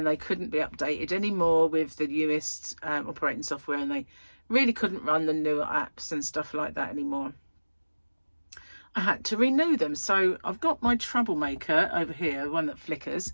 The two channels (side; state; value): both; inverted; correlation -1.00